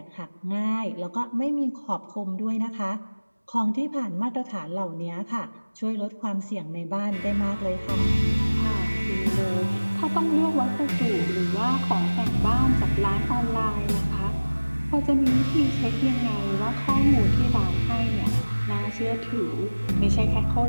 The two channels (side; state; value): both; inverted; correlation -1.00